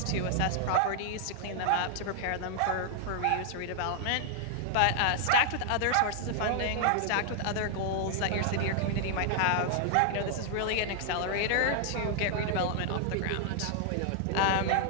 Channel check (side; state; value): both; different; correlation 0.00